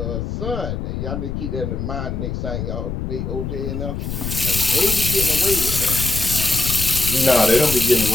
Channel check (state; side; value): noise; left; rumble, 4 dB below the sound